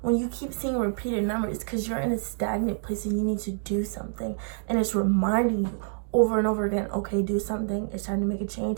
When you keep seeing repeated numbers, it's because you're in a stagnant place and you need to do something. And it's reminding you over and over again, okay, do something. It's time to make a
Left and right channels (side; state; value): left; silent; 60 dB below the other